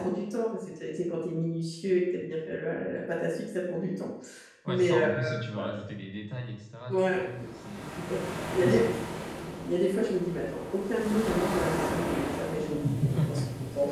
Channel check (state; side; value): identical; both; correlation 1.00